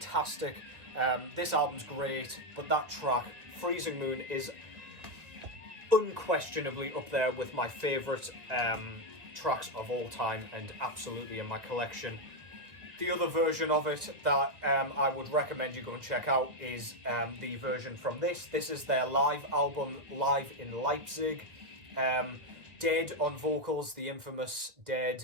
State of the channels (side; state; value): left; late; 1.9 ms